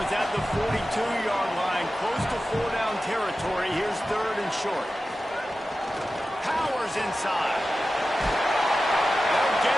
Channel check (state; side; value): normal; both; correlation 0.94